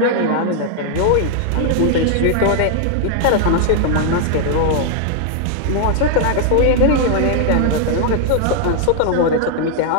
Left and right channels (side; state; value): both; different; correlation 0.00